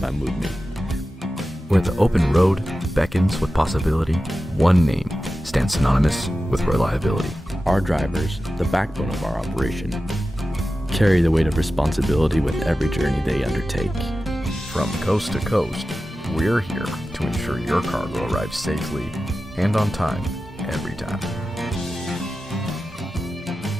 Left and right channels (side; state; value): both; normal; correlation 0.94